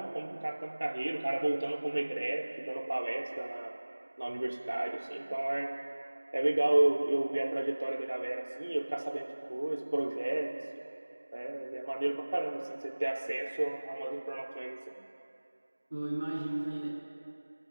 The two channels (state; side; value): inverted; both; correlation -1.00